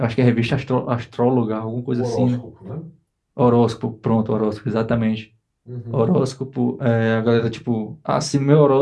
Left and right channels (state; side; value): identical; both; correlation 1.00